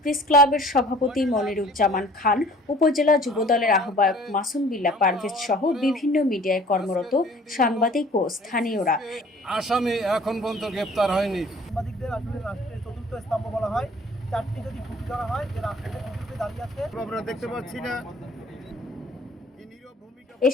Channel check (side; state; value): both; normal; correlation 0.51